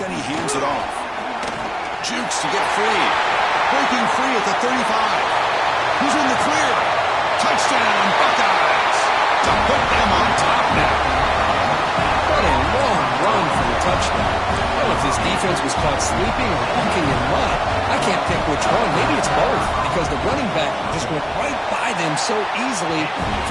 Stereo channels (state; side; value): identical; both; correlation 1.00